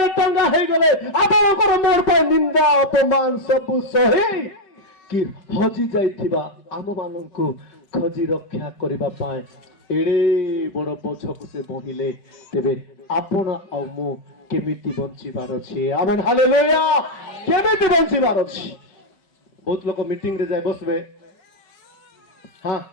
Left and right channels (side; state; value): right; late; 5.3 ms